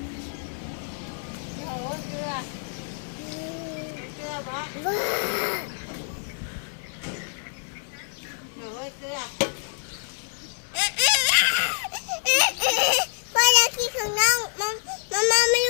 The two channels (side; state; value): right; silent; digital silence